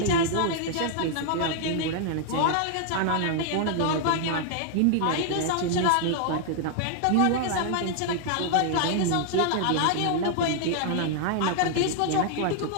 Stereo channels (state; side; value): different; both; correlation 0.00